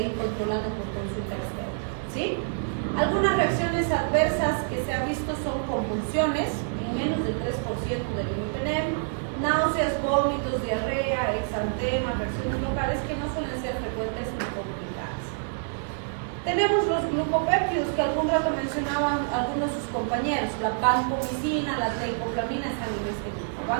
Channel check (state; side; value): silent; left; digital silence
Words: ir controlando por consulta externa. ¿Sí? Algunas reacciones adversas que se han visto son convulsiones, en menos del 3% del imipenem, náuseas, vómitos, diarrea, exantema, reacciones locales que no suelen ser frecuentes ni complicadas. Tenemos los glucopéptidos que algún rato mencionaban algunos de sus compañeros, la vancomicina, la teicoplamina están en este grupo.